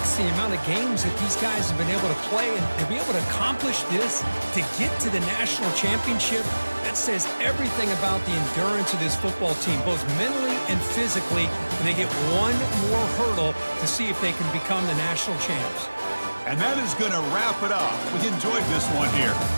the amount of games that these guys have been able to play, and to be able to accomplish this, to get to the national championship, that says everything about the endurance of this football team, both mentally and physically, and they get one more hurdle to see if they can become the national champs. And that is going to wrap it up. We enjoyed this one here.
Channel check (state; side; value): inverted; both; correlation -1.00